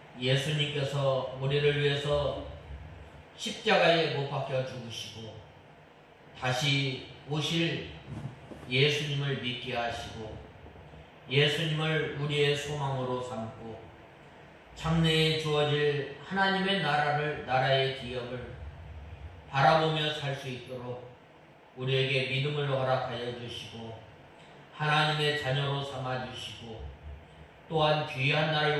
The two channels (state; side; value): identical; both; correlation 1.00